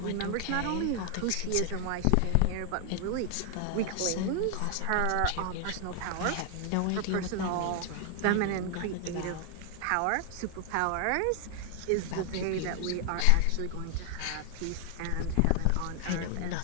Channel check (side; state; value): both; different; correlation 0.00